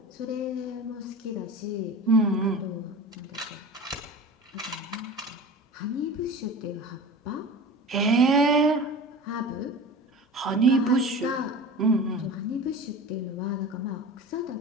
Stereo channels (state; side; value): normal; both; correlation 0.34